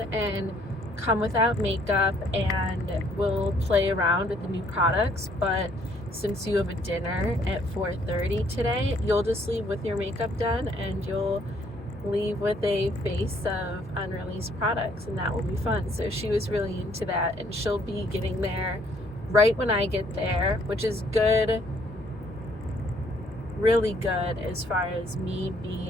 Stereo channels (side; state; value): both; normal; correlation 0.65